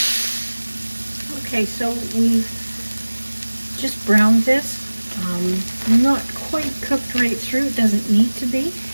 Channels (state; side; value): inverted; both; correlation -1.00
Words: Okay, so we've just browned this. Not quite cooked right through, it doesn't need to be.